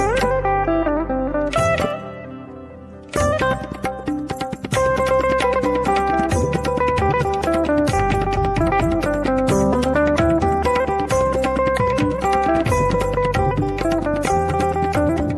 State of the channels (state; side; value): identical; both; correlation 1.00